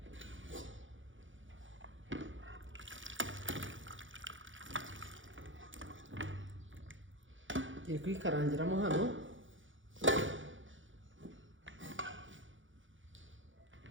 Ngiye kuyikarangiramo hano.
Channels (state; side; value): late; left; 0.56 ms